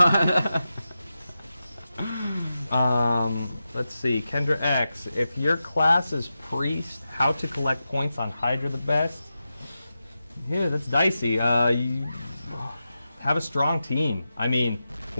Yeah. Let's see. Kendra X, if your class is priest, how to collect points on Hydra the best? Yeah, that's dicey. You have a strong team. I mean,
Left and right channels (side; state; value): both; inverted; correlation -0.91